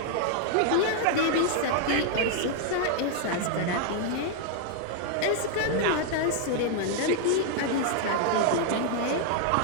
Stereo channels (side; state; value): both; different; correlation 0.00